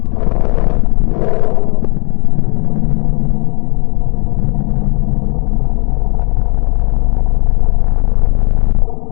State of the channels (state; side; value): quieter; right; 34.4 dB